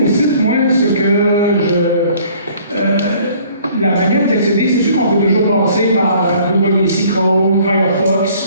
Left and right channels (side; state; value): both; inverted; correlation -0.56